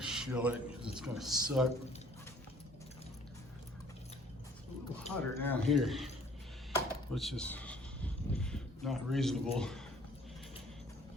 it because it's gonna suck. It's a little hotter down here, which is not reasonable.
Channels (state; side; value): normal; both; correlation 0.56